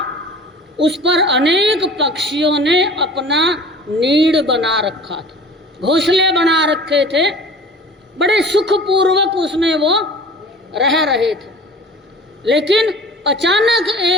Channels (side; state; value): both; normal; correlation 0.43